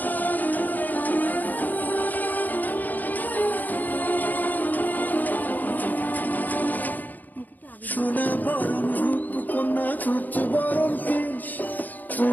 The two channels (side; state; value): right; late; 0.084 ms